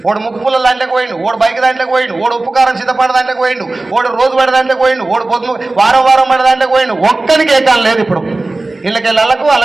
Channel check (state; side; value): quieter; left; 3.0 dB